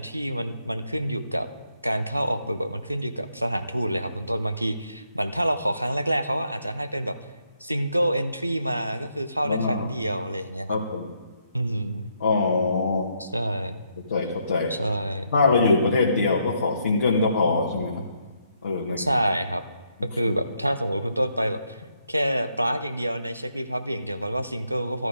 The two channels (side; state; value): both; inverted; correlation -0.76